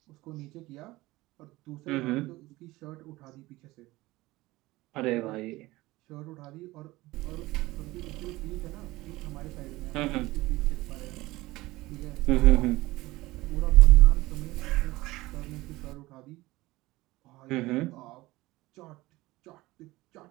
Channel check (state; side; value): quieter; left; 19.4 dB